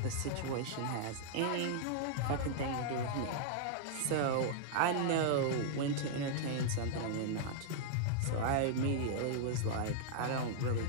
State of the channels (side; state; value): both; different; correlation -0.01